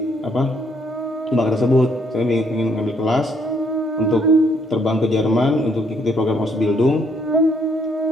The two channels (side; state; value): both; normal; correlation 0.69